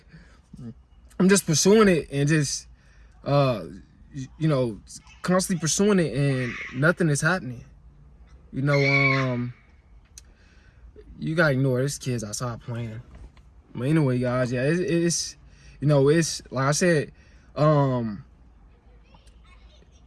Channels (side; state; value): both; identical; correlation 1.00